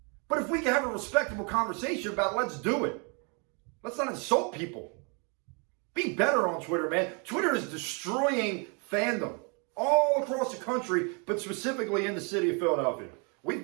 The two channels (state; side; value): quieter; left; 35.2 dB